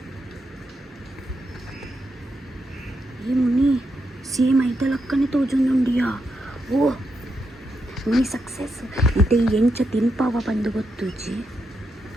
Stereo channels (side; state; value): both; normal; correlation 0.83